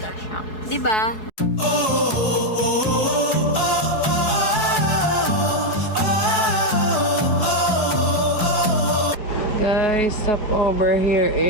siya. Di ba? Guys, stop over here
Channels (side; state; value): right; late; 4.7 ms